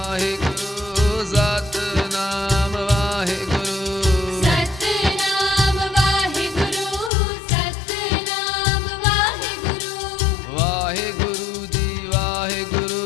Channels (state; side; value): drops out; right; at 7.1 s